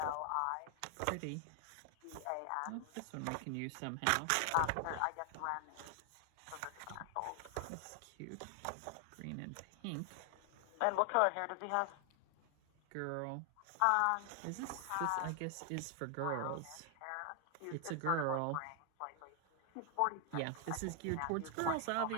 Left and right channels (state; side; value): different; both; correlation 0.00